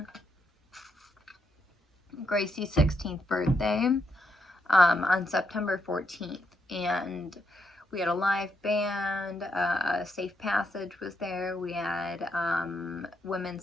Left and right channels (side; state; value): both; normal; correlation 0.79